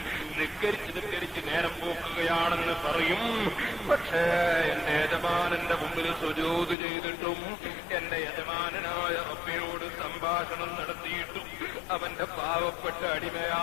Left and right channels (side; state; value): right; drops out; at 6.8 s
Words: നിസ്കരിച്ച് നേരം പോക്കുകയാണെന്ന് പറയും. പക്ഷേ എന്റെ യജമാനന്റെ മുമ്പിൽ സുജൂദ് ചെയ്തിട്ടും എന്റെ യജമാനനായ റബ്ബിനോട് സംഭാഷണം നടത്തിയിട്ടും അവന്റെ പാവപ്പെട്ട